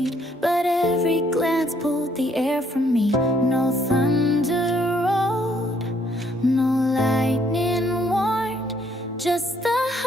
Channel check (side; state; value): both; normal; correlation 0.67